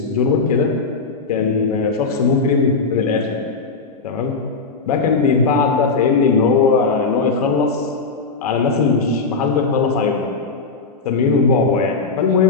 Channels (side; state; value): right; quieter; 4.3 dB